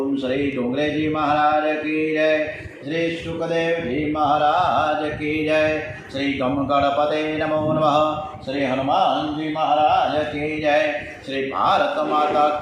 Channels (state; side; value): identical; both; correlation 1.00